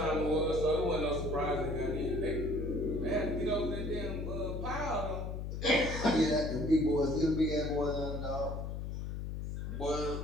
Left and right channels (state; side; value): noise; left; hum, 5 dB below the sound